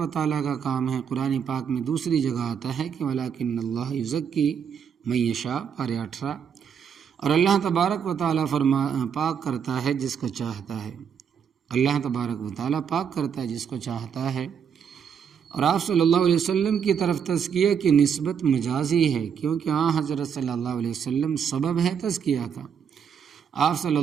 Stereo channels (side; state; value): left; quieter; 7.5 dB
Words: تعالیٰ کا کام ہے۔ قرآن پاک میں دوسری جگہ آتا ہے کہ وَلَٰكِنَّ اللَّهَ يُزَكِّي مَن يَشَاءُ، پارہ 18، اور اللہ تبارک و تعالیٰ پاک کرتا ہے جس کو چاہتا ہے، اللہ تبارک و تعالیٰ پاک کرتا ہے جس کو چاہتا ہے۔ اور آپ صلی اللہ علیہ وسلم کی طرف تزکیہ کی نسبت مجازی ہے، کیونکہ حضرت صلی اللہ علیہ وسلم سبب ہے تزکیہ کا۔ آپ صلی